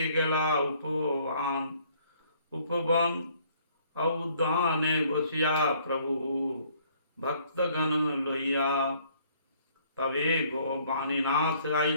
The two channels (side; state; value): both; inverted; correlation -0.62